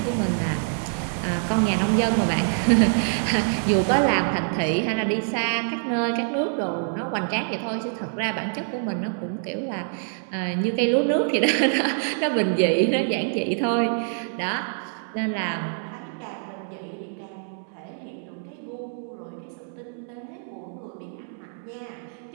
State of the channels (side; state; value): left; silent; digital silence